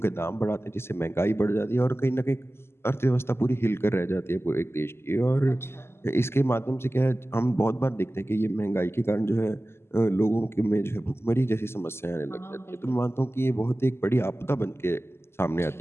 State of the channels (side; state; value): right; late; 0.12 ms